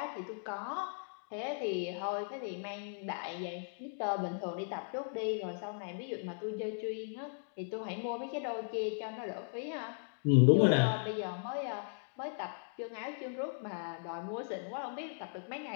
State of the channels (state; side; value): silent; right; digital silence